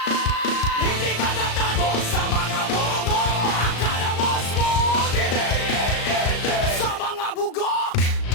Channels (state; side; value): late; right; 36 ms